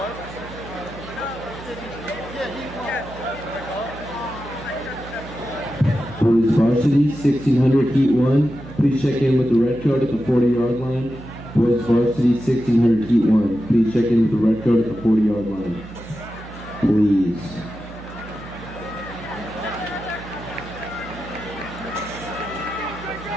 Boys varsity 1600, Heat 1. Please check in with the red coat at the 40-yard line. Boys varsity 1600, Heat 1. Please check in with the red coat at the 40-yard line. Please.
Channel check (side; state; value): both; normal; correlation 0.91